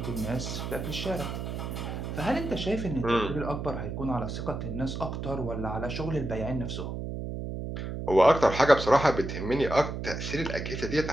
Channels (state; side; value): noise; right; hum, 5 dB below the sound